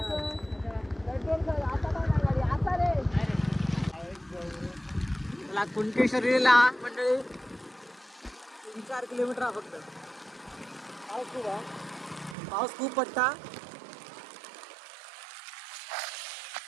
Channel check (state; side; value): drops out; left; at 12.4 s